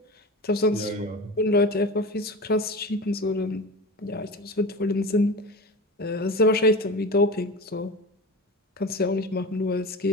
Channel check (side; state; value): both; normal; correlation 0.30